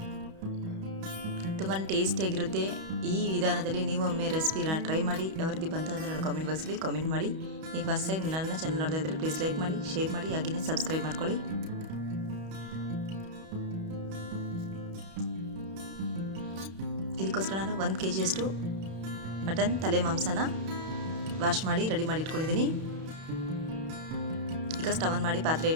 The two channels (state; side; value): late; left; 31 ms